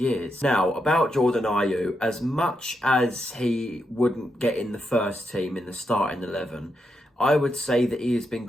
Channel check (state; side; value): normal; both; correlation 0.83